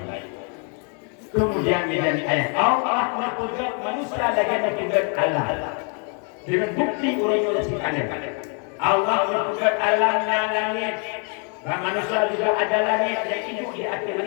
Kemudian menjadi ayat Allah menunjukkan manusia lagi menunjukkan Allah dengan bukti orang yang kalian. Allah menunjukkan alamnya langit dan manusia juga ada langit yang hidup di atas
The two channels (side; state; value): right; quieter; 39.4 dB